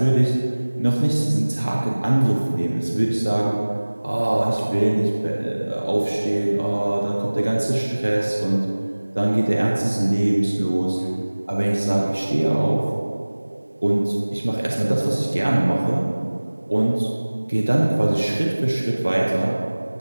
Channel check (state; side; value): inverted; both; correlation -1.00